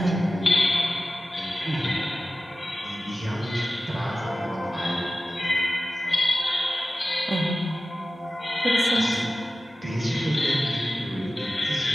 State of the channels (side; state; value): both; normal; correlation 0.95